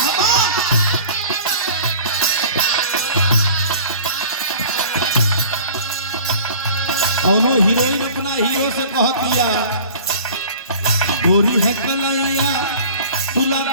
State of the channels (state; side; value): inverted; both; correlation -0.44